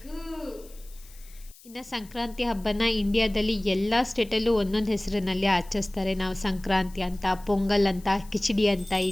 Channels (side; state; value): left; noise; hiss, 23 dB below the sound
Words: ಇನ್ನು ಸಂಕ್ರಾಂತಿ ಹಬ್ಬನ ಇಂಡಿಯಾದಲ್ಲಿ ಎಲ್ಲ ಸ್ಟೇಟಲ್ಲೂ ಒಂದೊಂದು ಹೆಸರಿನಲ್ಲಿ ಆಚರಿಸ್ತಾರೆ. ನಾವು ಸಂಕ್ರಾಂತಿ ಅಂತ, ಪೊಂಗಲ್ ಅಂತ, ಕಿಚಡಿ ಅಂತ ಈ